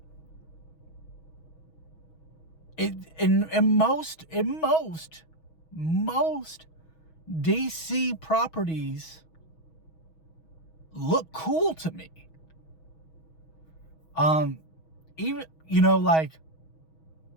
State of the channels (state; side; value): late; right; 6.2 ms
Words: In most DC properties look cool to me. Even, like,